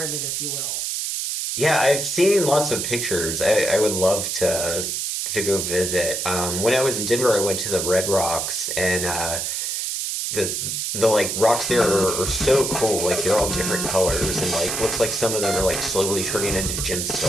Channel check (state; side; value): noise; right; hiss, 2 dB below the sound